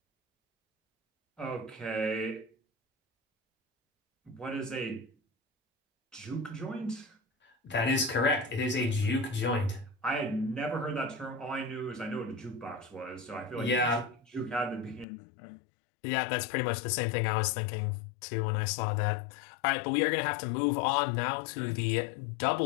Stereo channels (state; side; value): drops out; right; at 15.1 s